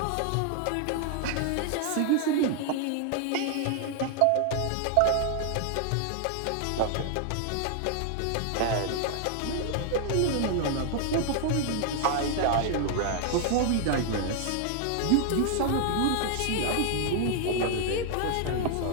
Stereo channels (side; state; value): both; different; correlation 0.00